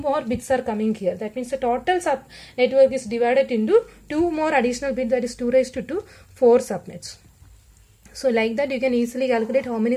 bits are coming here. That means the total sub network is divided into 2 more additional bits, that is 2 raised to 2, 4 subnets. So like that you can easily calculate how many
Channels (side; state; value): both; identical; correlation 1.00